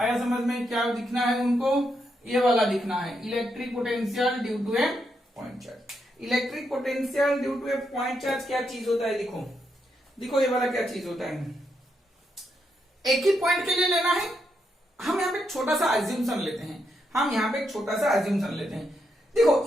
समझ में? क्या दिखना है उनको? ये वाला दिखना है, electric potential due to a point charge. Electric potential due to a point charge क्या चीज होता है? देखो देखो, ये वाला क्या चीज होता है? एक ही पॉइंट के लिए लेना है। हम यहाँ पे एक छोटा सा एज्यूम्पशन लेते हैं, हम यहाँ पे एक छोटा सा एज्यूम्पशन लेते हैं। देखो,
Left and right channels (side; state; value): both; normal; correlation 0.81